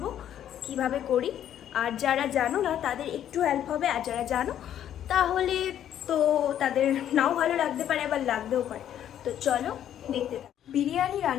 কিভাবে করি, আর যারা জানো না তাদের একটু হেল্প হবে, আর যারা জানো তাহলে তো তাদের নাও ভালো লাগতে পারে, আবার লাগতেও পারে। তো চলো দেখতে থাকো। বিরিয়ানি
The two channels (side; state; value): right; quieter; 10.5 dB